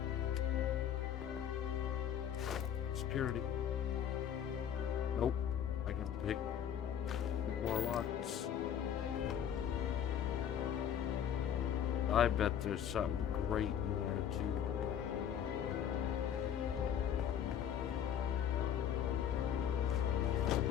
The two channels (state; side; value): quieter; right; 9.2 dB